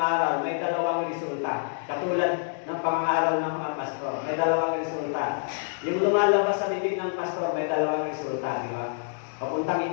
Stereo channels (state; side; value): silent; right; digital silence